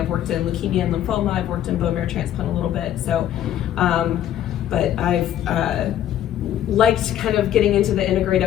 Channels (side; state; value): right; quieter; 11.3 dB